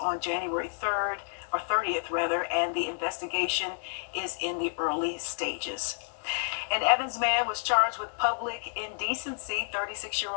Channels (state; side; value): silent; right; digital silence